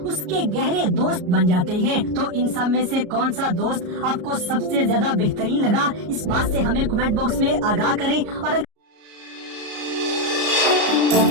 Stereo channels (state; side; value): late; left; 33 ms